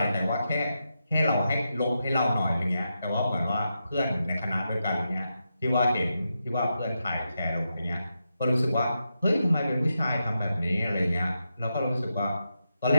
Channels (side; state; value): both; inverted; correlation -0.86